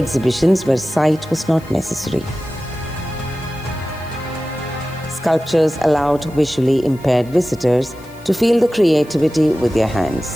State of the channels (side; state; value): left; noise; hiss, 25 dB below the sound